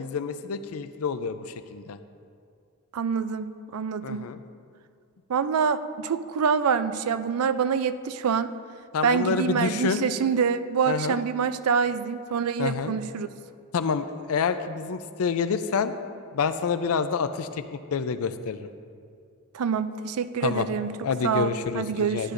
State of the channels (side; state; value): both; normal; correlation -0.17